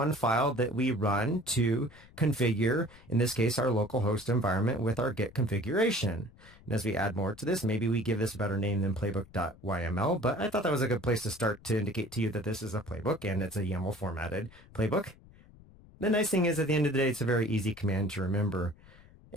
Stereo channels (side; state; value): left; noise; rumble, 24 dB below the sound